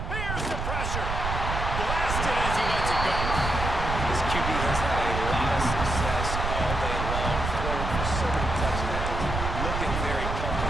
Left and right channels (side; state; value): right; noise; rumble, 3 dB below the sound